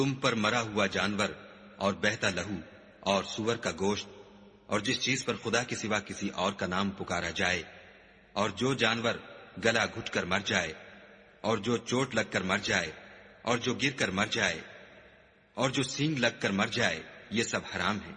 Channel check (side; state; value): both; identical; correlation 1.00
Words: پر مرا ہوا جانور اور بہتا لہو اور سور کا گوشت اور جس چیز پر خدا کے سوا کسی اور کا نام پکارا جائے، اور جو جانور گلا گھٹ کر مر جائے، اور جو چوٹ لگ کر مر جائے، اور جو گر کر مر جائے، اور جو سینگ لگ کر مر جائے، یہ سب حرام ہے۔